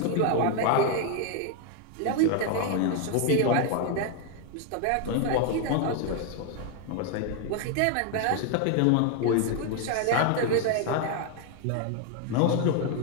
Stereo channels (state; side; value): different; both; correlation 0.01